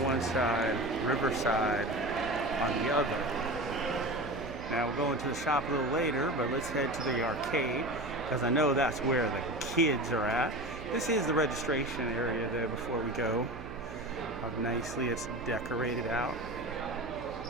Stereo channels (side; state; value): right; noise; hum, 11 dB below the sound